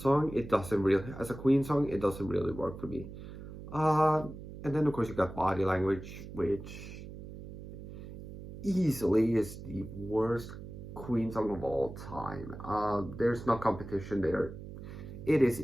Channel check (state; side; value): noise; right; hum, 12 dB below the sound